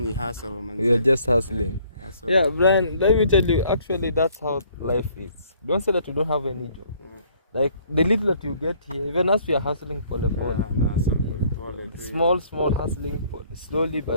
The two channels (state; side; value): inverted; both; correlation -0.61